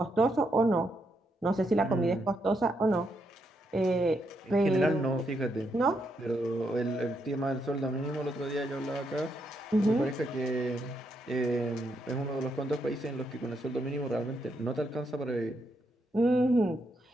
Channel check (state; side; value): normal; both; correlation 0.79